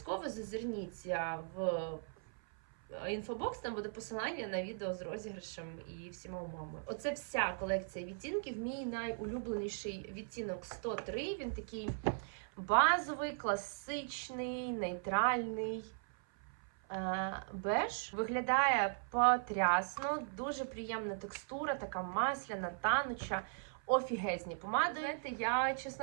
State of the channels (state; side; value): silent; left; 52 dB below the other